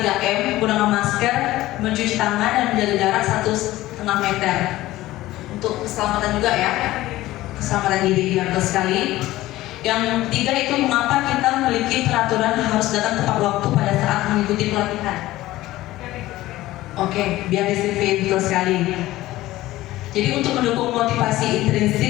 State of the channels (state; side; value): quieter; right; 16.6 dB